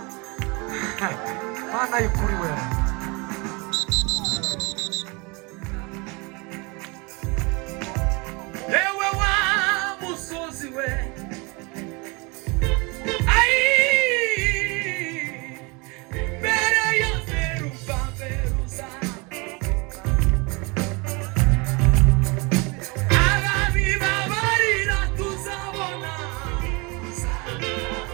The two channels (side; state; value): left; quieter; 28.3 dB